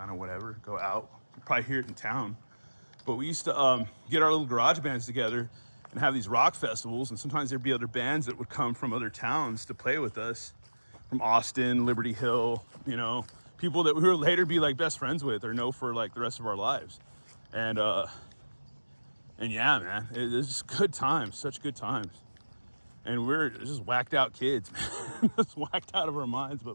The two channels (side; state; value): both; inverted; correlation -1.00